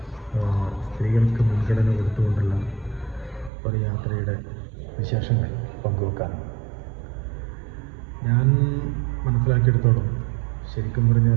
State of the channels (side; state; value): left; drops out; at 3.5 s